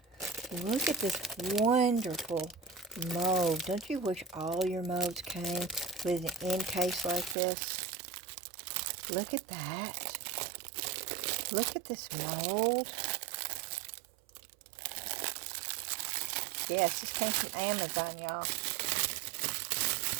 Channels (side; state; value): left; drops out; at 7.4 s